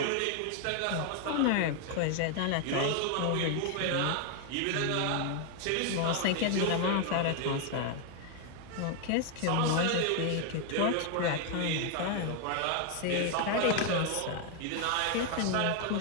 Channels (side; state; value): both; different; correlation 0.01